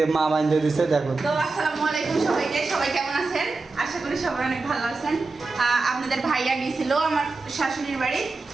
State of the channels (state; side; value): quieter; left; 3.8 dB